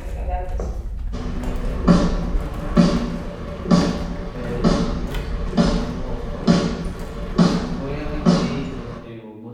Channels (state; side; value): identical; both; correlation 1.00